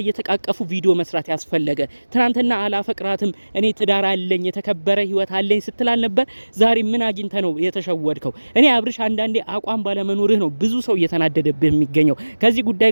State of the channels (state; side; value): inverted; both; correlation -1.00